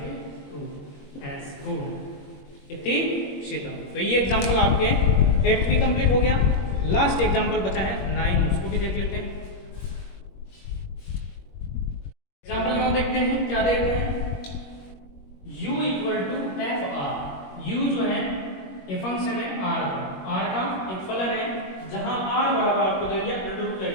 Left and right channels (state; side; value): late; right; 21 ms